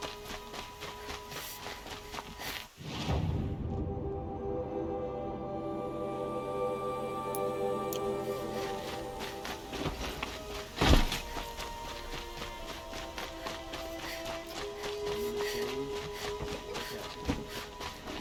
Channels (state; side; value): identical; both; correlation 1.00